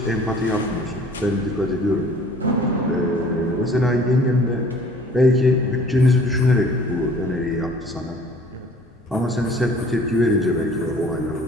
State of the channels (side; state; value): both; normal; correlation 0.52